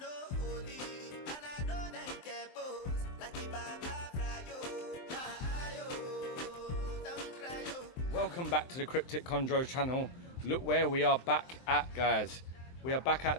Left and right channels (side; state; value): right; late; 23 ms